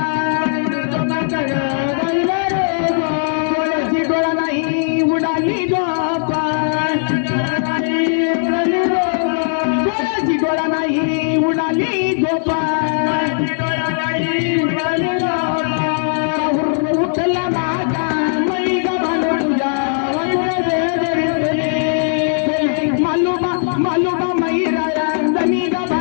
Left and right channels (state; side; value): silent; right; digital silence